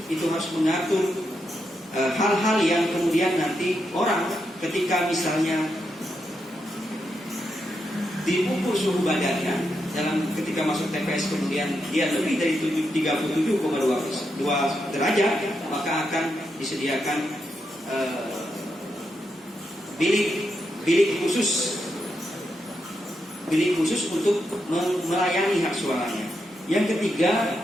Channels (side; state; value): both; normal; correlation 0.84